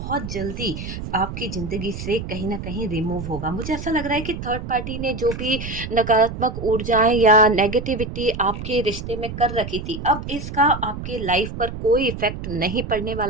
जल्दी आपकी जिंदगी से कहीं ना कहीं रिमूव होगा। मुझे ऐसा लग रहा है कि थर्ड पार्टी ने जो भी नकारात्मक ऊर्जाएं या नेगेटिविटी आपके रिश्ते में कर रखी थी, अब इसका आपके लाइफ पर कोई इफेक्ट नहीं पड़ने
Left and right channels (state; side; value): noise; right; rumble, 8 dB below the sound